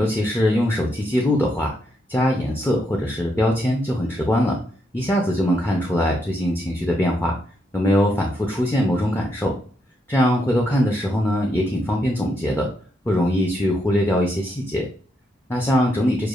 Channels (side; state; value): both; normal; correlation 0.79